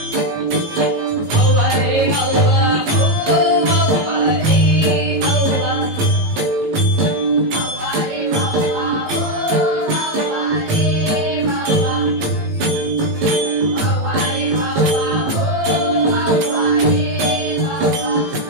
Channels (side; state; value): left; late; 18 ms